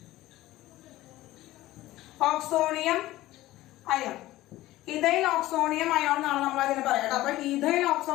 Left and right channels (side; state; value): right; quieter; 16.4 dB